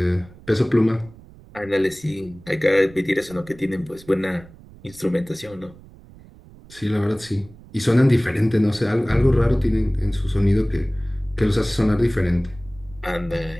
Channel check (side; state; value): right; noise; rumble, 22 dB below the sound